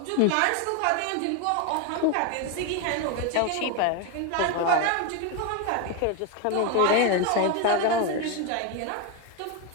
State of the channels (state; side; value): different; both; correlation 0.02